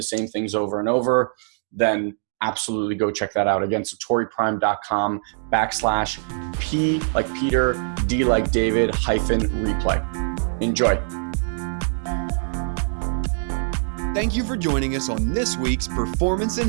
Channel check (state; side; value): silent; left; digital silence